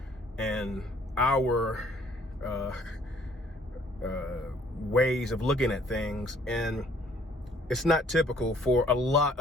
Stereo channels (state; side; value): normal; both; correlation 0.61